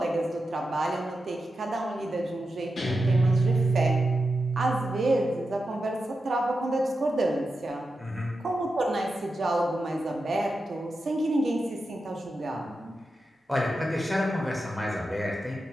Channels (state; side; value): normal; both; correlation 0.90